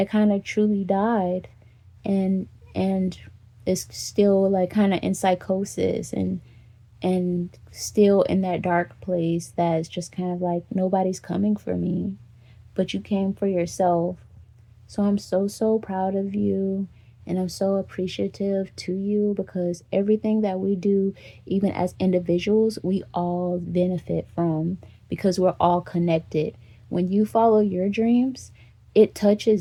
kind of truly died, and and is still like kind of in psychosis and still in that dark place that's just kind of like, nobody's coming for me, but you came for yourself. So I'm so, so proud of you. And I'm so appreciative to you, because everything that we do, even as individuals, we all benefit from, because we're all connected. When you follow your dreams, it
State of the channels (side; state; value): both; identical; correlation 1.00